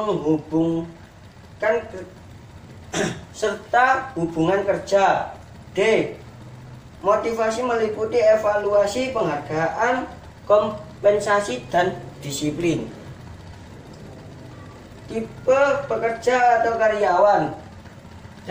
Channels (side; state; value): both; identical; correlation 1.00